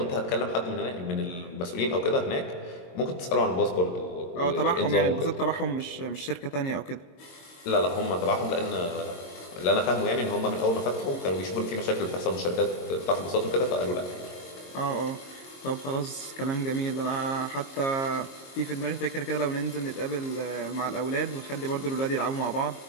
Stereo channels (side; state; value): right; late; 22 ms